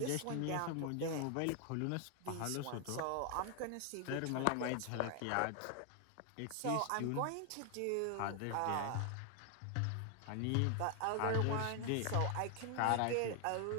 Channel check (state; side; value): different; both; correlation 0.00